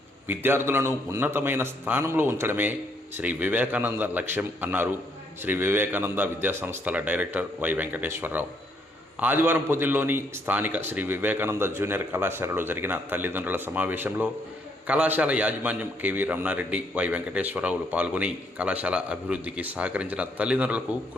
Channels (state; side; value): normal; both; correlation 0.71